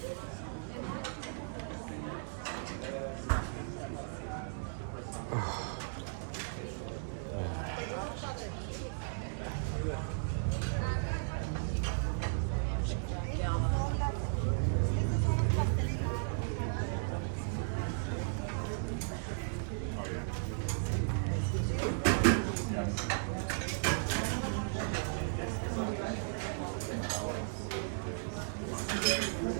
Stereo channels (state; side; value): silent; left; digital silence